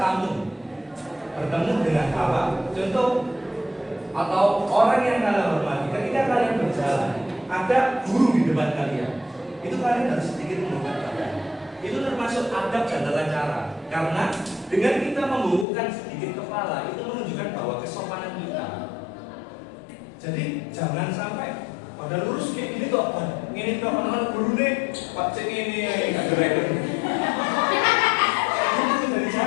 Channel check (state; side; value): drops out; right; at 15.7 s